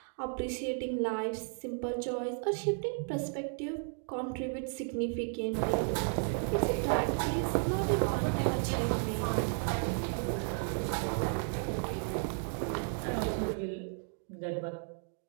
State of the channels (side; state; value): left; silent; 55 dB below the other